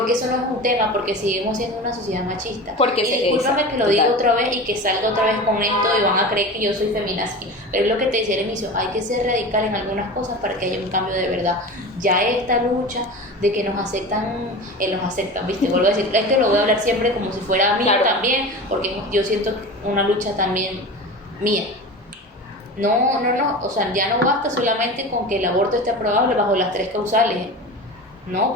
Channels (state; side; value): normal; both; correlation 0.31